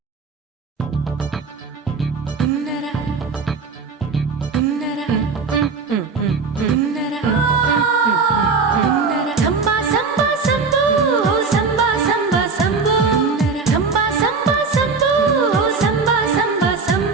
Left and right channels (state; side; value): quieter; left; 4.7 dB